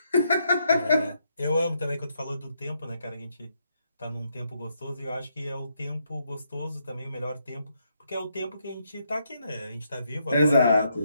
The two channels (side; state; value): both; inverted; correlation -0.77